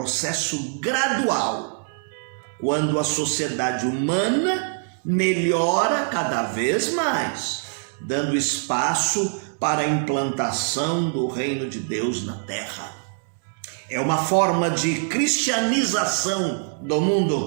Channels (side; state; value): left; silent; digital silence